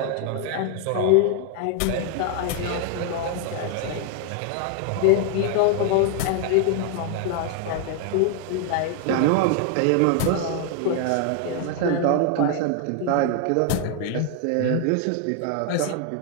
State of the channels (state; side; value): different; both; correlation 0.00